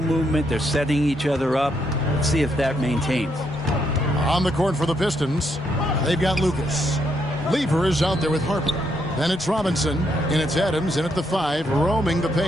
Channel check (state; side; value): normal; both; correlation 0.76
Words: movement. They're setting each other up. Let's see if that maintains. On the court for the Pistons, they've got Lucas. Lever is out there with Harper. Then it's Robinson, and it's Adams in at the 5, roaming the